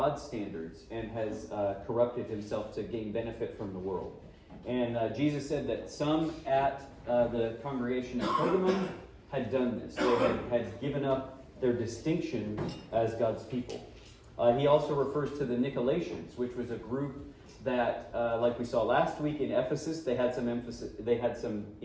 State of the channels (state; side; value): identical; both; correlation 1.00